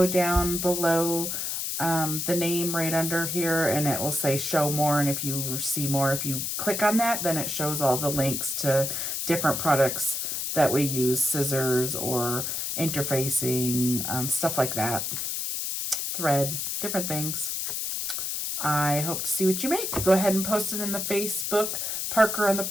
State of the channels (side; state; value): left; noise; hiss, 2 dB below the sound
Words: down below the name right under here, and it will say show more. And if you see more, if you click on that, then it shows all the links to different products that we use, scissors or interfacing, stuff like that, thread, different things. I hope to see what you make. Go ahead and post it in the Facebook Parker on the